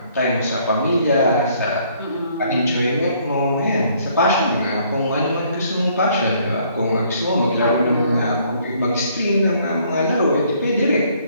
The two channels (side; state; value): both; inverted; correlation -0.64